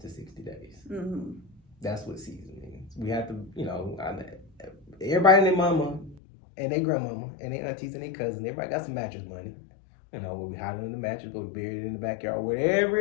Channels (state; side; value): drops out; right; at 6.2 s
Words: 60 days. Mm-hmm. That's what season means. We have to, everybody and their mama and their grandmama and their aunties and their cousins, everybody got some mattress money. Where we hide it in the mattress, go bury it in the backyard, wherever